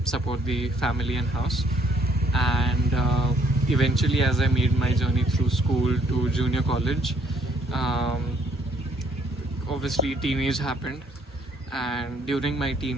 support the family and house. And eventually, as I made my journey through school to junior college, um, obviously teenage happened, and during my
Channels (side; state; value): both; normal; correlation 0.65